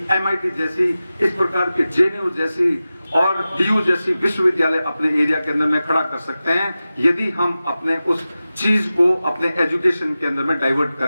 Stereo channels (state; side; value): inverted; both; correlation -0.95